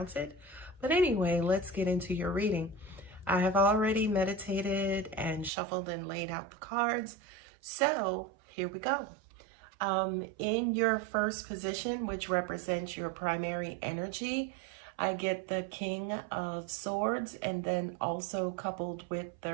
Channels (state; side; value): drops out; left; at 5.5 s